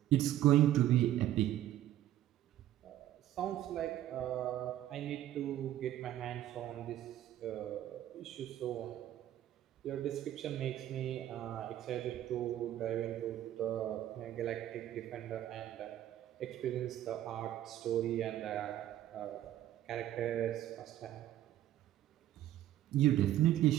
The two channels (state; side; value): quieter; left; 12.8 dB